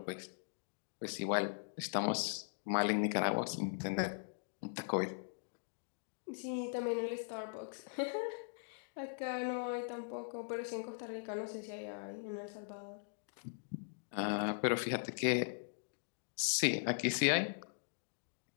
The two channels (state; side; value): silent; right; digital silence